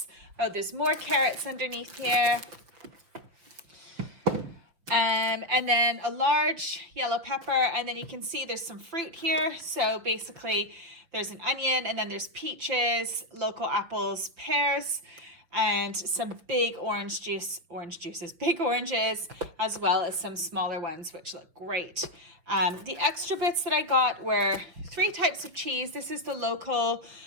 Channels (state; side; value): late; left; 5.9 ms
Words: Oh, there's more carrots underneath here. And then a large yellow pepper, and then you can see there's some fruit here. So basically there's an onion, and then there's peaches, local apples, pears, and some big big oranges, as well as some smaller ones, which look great. The extra bits that I got were 3 types of cheese. This is the local